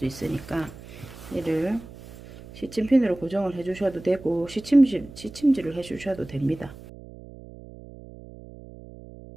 있으니까 얘를 시침핀으로 고정을 해주셔도 되고, 시침질을 해주셔도 됩니다.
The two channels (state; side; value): noise; right; hum, 17 dB below the sound